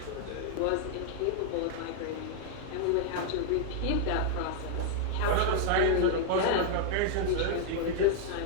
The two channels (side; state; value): both; different; correlation -0.01